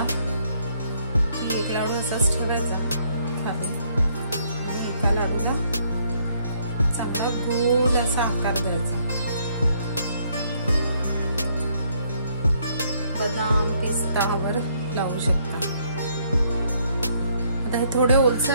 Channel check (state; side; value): inverted; both; correlation -0.68